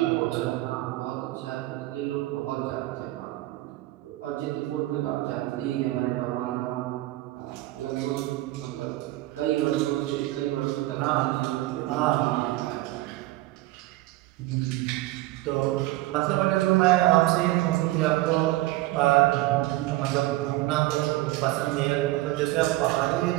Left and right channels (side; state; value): left; quieter; 17.9 dB